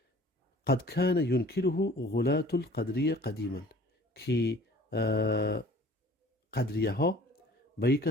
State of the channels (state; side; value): normal; both; correlation 0.50